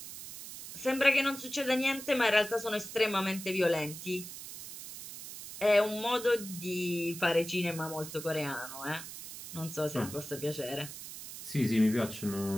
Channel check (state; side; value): noise; right; hiss, 11 dB below the sound